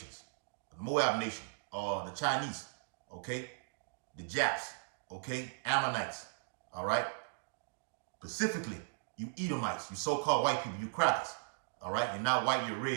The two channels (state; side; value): silent; left; digital silence